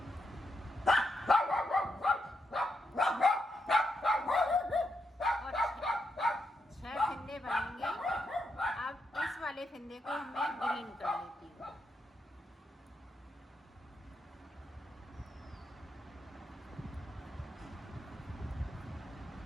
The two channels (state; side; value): normal; both; correlation 0.82